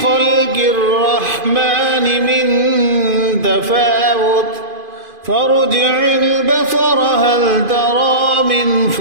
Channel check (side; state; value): left; late; 2.5 ms